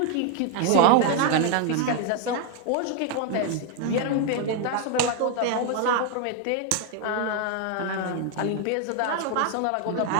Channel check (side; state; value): both; different; correlation 0.01